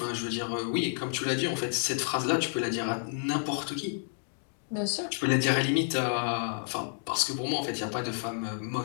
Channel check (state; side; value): silent; right; digital silence